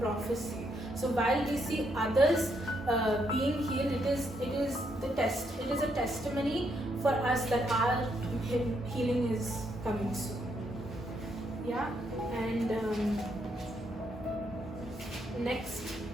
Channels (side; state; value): both; normal; correlation 0.76